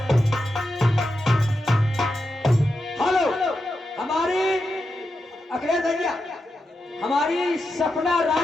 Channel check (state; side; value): normal; both; correlation 0.88